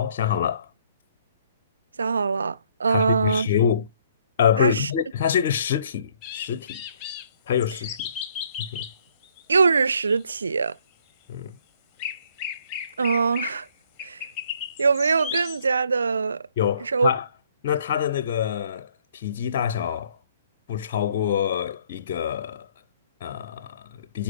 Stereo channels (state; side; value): inverted; both; correlation -0.64